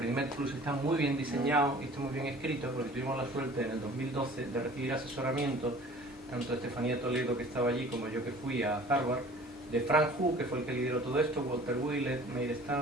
Plus está muy bien diseñado y está muy bien escrito, porque tuvimos la suerte en el 2012 de recibir asesoramiento, tanto de Estefanía Toledo, que estaba allí, como yo que fui a Harvard, de Frank Hu, que fue el que lideró todo esto, Walter Willett, Meir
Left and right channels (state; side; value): normal; both; correlation 0.47